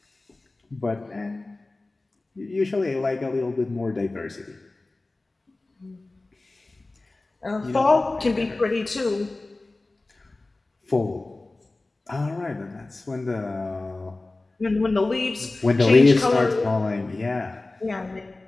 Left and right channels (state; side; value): quieter; right; 3.1 dB